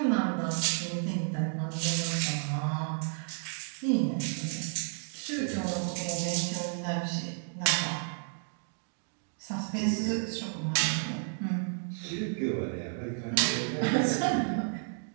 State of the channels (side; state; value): left; silent; 57 dB below the other